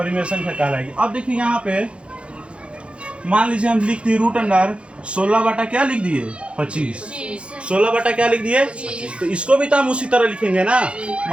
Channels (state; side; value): late; left; 0.059 ms